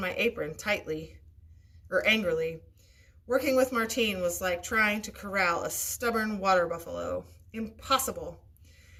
my apron angrily. Working with Martine was like trying to corral a stubborn water buffalo. Impossible.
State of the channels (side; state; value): both; identical; correlation 1.00